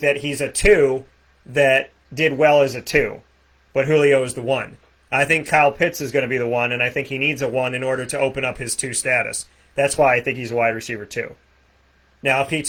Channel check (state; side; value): identical; both; correlation 1.00